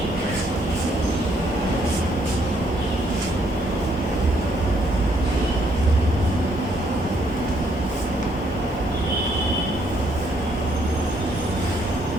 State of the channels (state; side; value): normal; both; correlation 0.70